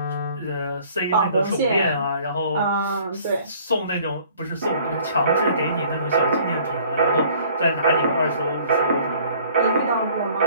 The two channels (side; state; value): both; inverted; correlation -0.55